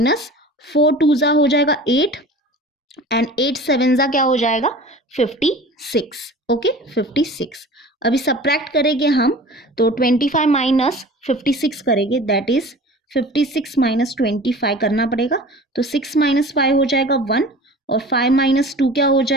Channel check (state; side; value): normal; both; correlation 0.40